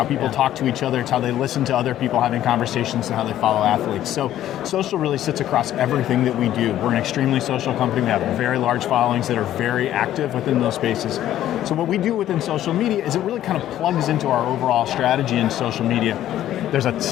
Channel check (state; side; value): quieter; right; 12.4 dB